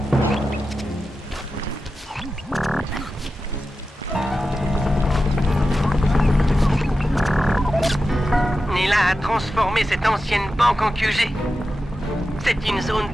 Nela a transformé cette ancienne banque en QG. C'est une zone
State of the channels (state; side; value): normal; both; correlation 0.92